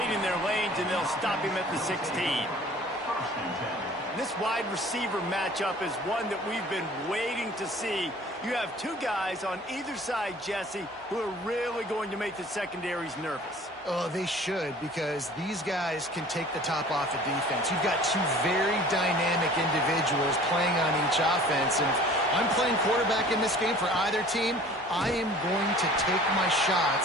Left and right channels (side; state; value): both; normal; correlation 0.48